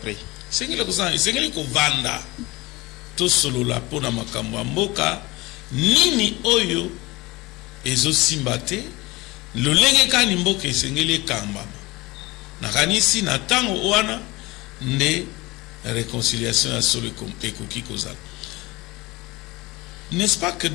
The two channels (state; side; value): quieter; right; 21.6 dB